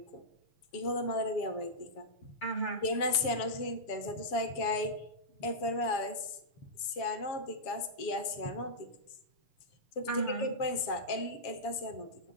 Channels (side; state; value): right; late; 7.2 ms